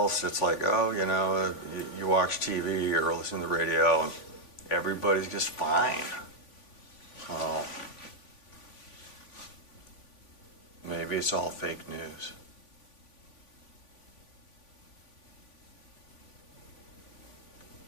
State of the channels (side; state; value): right; late; 3.5 ms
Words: it's like, oh, you know, you watch TV or listen to the radio, and everybody's just fine. Maybe it's all fake news.